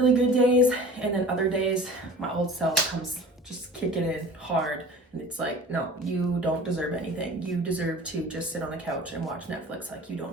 good days, and then other days my old self comes just kicking in hard, and it's like, no, you don't deserve anything. You deserve to just sit on the couch and watch Netflix. Like, you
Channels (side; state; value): both; normal; correlation 0.41